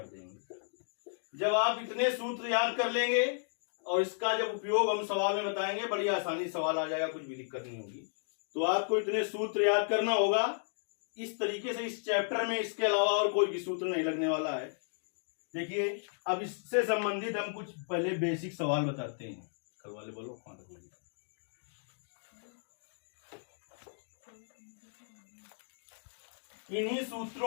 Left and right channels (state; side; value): silent; right; digital silence